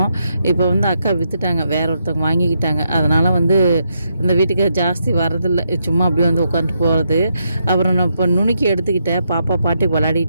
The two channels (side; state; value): both; inverted; correlation -0.80